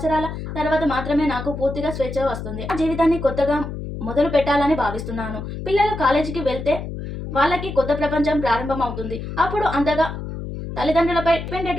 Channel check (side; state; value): left; noise; hum, 7 dB below the sound